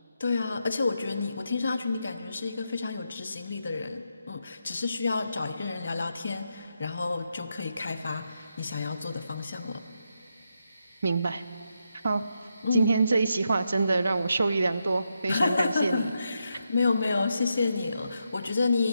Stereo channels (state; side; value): inverted; both; correlation -0.84